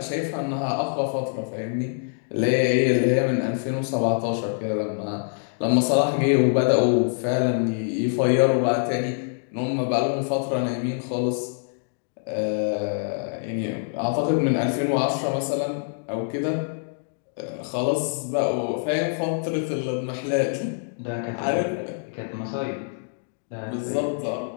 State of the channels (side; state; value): right; silent; digital silence